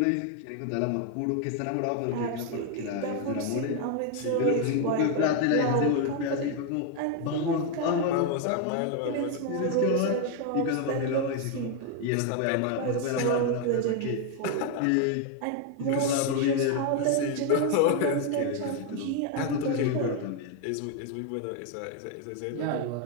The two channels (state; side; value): different; both; correlation 0.01